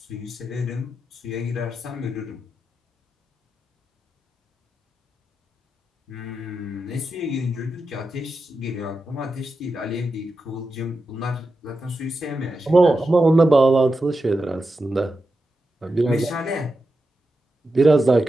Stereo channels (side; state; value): both; normal; correlation 0.89